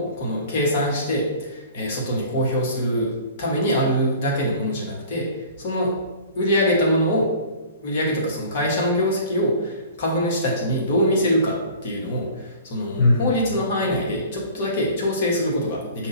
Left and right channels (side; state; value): both; inverted; correlation -0.46